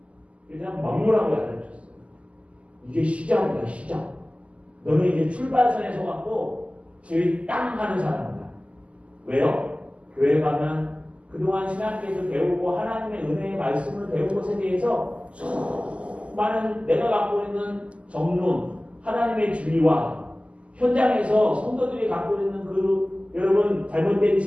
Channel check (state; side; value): late; left; 0.060 ms